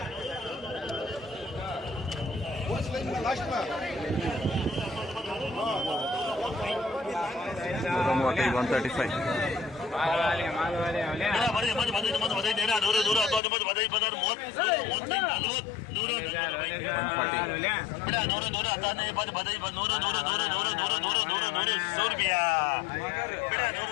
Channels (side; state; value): right; drops out; at 13.4 s